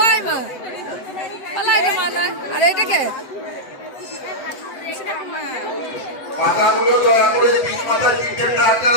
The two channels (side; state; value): right; late; 7.9 ms